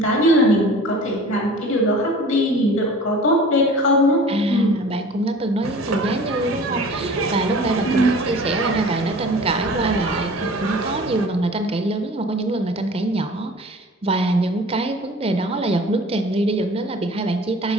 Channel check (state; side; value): normal; both; correlation 0.43